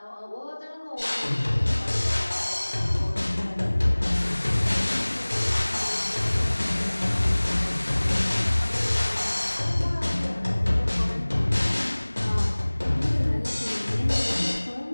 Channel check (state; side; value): inverted; both; correlation -1.00